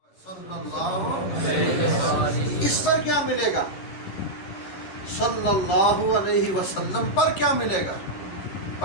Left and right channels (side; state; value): right; late; 10 ms